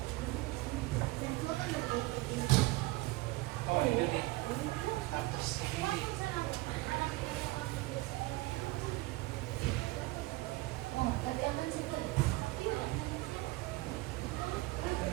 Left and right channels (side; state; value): left; quieter; 20.4 dB